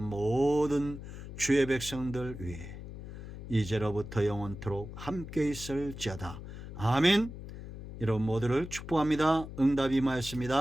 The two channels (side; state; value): left; noise; hum, 11 dB below the sound